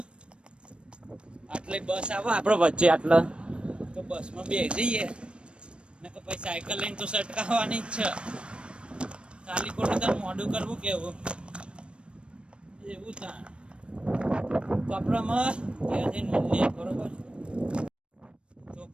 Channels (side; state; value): left; late; 0.057 ms